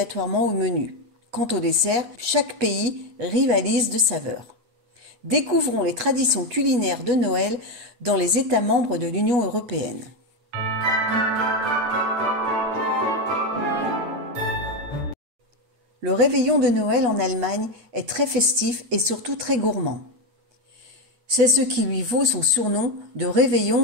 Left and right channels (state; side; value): late; left; 8.2 ms